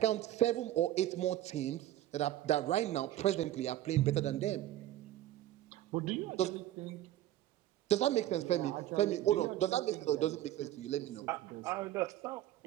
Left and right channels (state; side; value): quieter; left; 13.8 dB